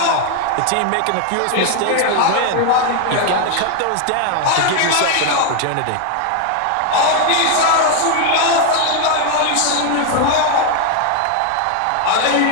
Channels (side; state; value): both; different; correlation 0.01